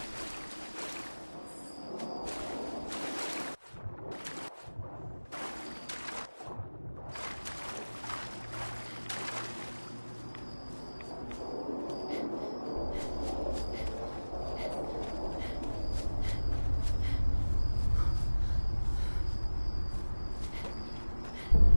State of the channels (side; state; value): both; inverted; correlation -1.00